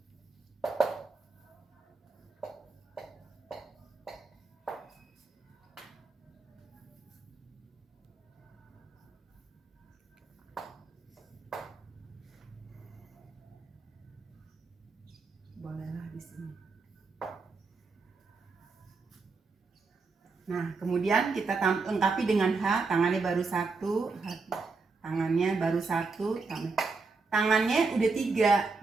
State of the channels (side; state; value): left; quieter; 4.1 dB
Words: Bolehlah di sini. Nah, kemudian kita lengkapi dengan H, tangannya baru 1, tangannya baru 1, tangannya udah